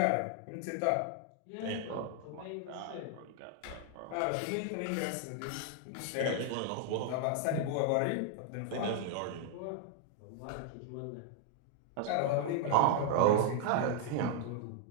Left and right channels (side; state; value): both; different; correlation 0.00